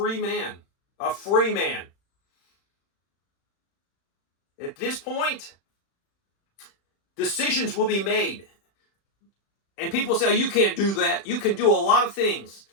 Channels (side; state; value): right; late; 36 ms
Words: man. A free man. At this point, decisions will be made. And people say, oh, you can't do that. You can do a lot of things.